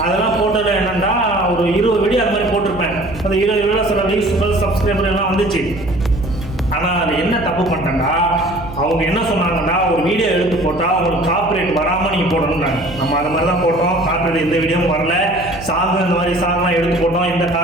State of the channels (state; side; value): noise; right; hum, 14 dB below the sound